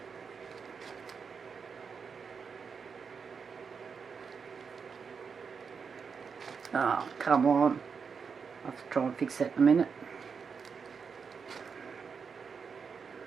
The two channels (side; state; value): left; quieter; 5.8 dB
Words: Oh, come on. I'll have to try and fix that in a minute.